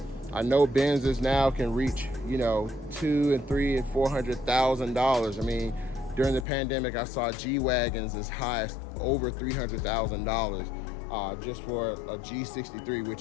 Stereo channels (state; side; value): drops out; right; at 6.5 s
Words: I know Benzes now can reach, you know, $200,000 and $300,000 and $400,000. I mean, during the pandemic, I saw G-Wagons as high as over $300,000 just for a G63,